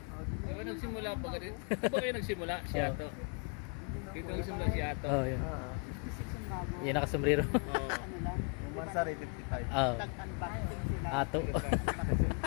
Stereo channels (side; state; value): right; quieter; 35.9 dB